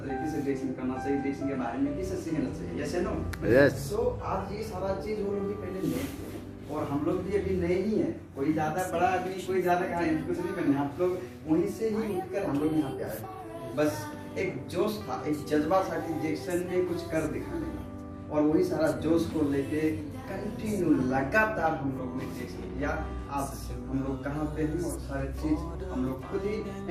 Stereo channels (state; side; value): identical; both; correlation 1.00